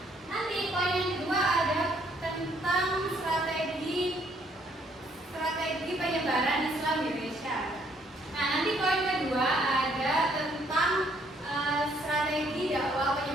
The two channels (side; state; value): both; normal; correlation 0.67